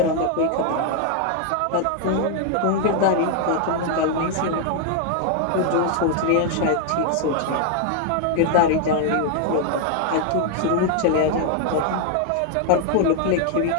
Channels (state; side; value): different; both; correlation 0.00